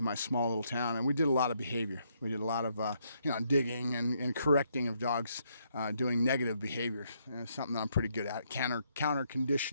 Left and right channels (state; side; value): inverted; both; correlation -0.74